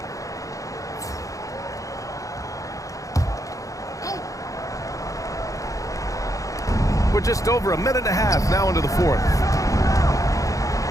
We're just over 1.5 minutes now into the fourth.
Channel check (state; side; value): late; right; 0.16 ms